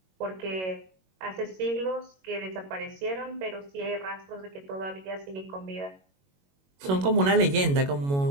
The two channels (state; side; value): late; left; 21 ms